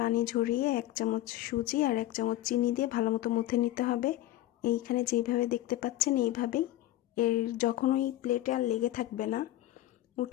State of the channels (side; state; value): right; quieter; 14.8 dB